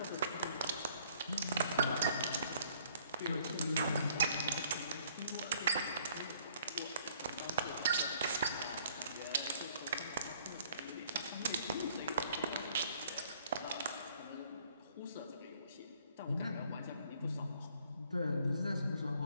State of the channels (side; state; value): both; inverted; correlation -0.61